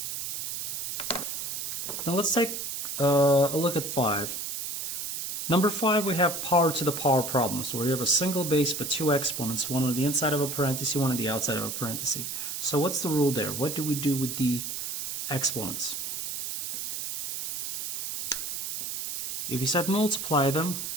Now let's take a look at 5. Number 5, we have power to the power problem. So we have a single base but 2 exponents, one on the inside of a parenthesis, one on the outside of a parenthesis. So what's the rule there? What do we do with the exponents? If you said multiply them,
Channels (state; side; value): noise; right; hiss, 4 dB below the sound